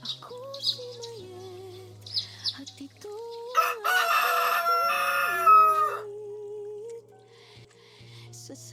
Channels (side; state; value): both; identical; correlation 1.00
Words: Ako si Mayet at ito ang aking sa